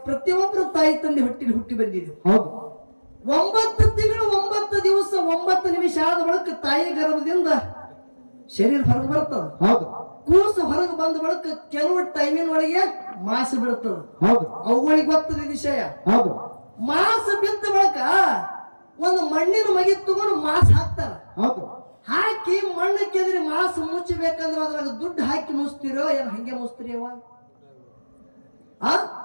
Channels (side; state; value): both; inverted; correlation -1.00